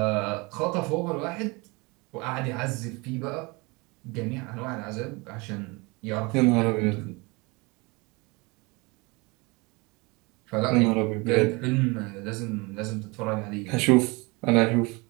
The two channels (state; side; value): quieter; left; 26.4 dB